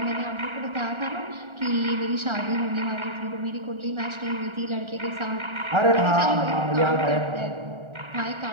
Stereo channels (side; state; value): left; late; 1.4 ms